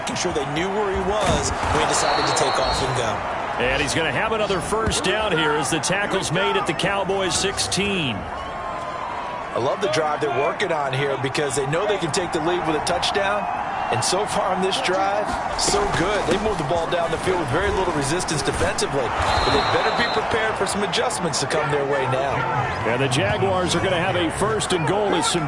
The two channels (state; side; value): identical; both; correlation 1.00